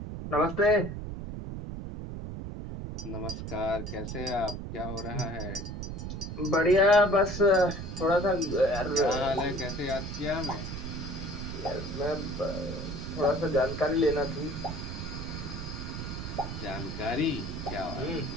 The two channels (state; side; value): noise; right; rumble, 6 dB below the sound